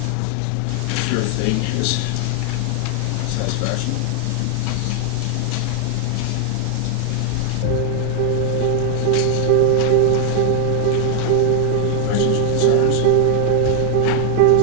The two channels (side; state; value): both; different; correlation 0.00